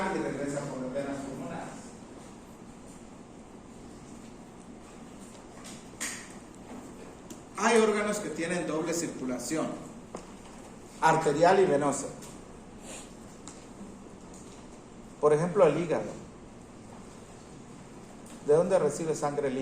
y regresa por las venas pulmonares. Hay órganos que tienen doble circulación, arterial y venosa. Por ejemplo, el hígado. ¿De dónde recibe sangre el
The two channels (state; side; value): identical; both; correlation 1.00